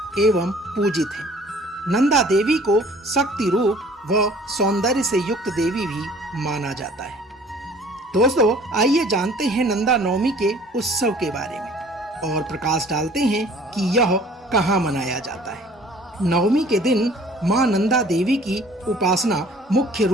एवं पूजित है। नंदा देवी को शक्ति रूप व सौंदर्य से युक्त देवी भी माना जाता है। दोस्तों, आइए जानते हैं नंदा नवमी के उत्सव के बारे में और प्रकाश डालते हैं कि यह कहाँ मनाया जाता है। नवमी के दिन मां नंदा देवी की उपासना मुख्य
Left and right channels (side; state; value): both; normal; correlation 0.52